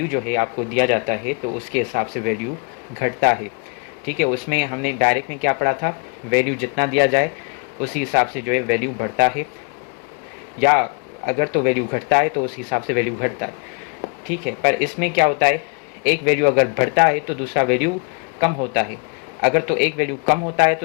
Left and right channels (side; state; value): right; quieter; 34.9 dB